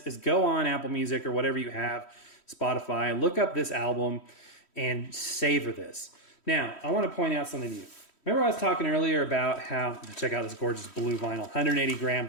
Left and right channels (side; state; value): right; late; 3.1 ms